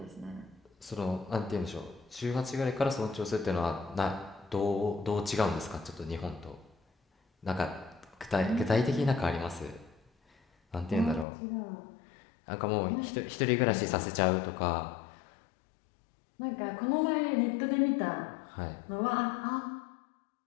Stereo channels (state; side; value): drops out; right; at 11.2 s